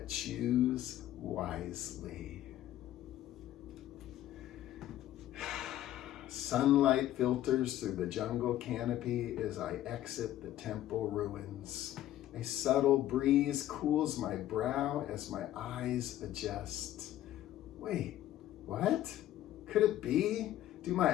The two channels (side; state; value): right; quieter; 13.3 dB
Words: choose wisely. Sunlight filters through the jungle canopy as I exit the temple ruins. A subtle breeze cools my brow as my eyes adjust. Wait, what? Could it be? Do